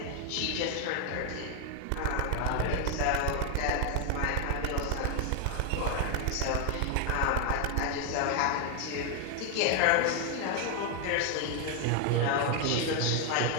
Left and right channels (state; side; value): different; both; correlation 0.01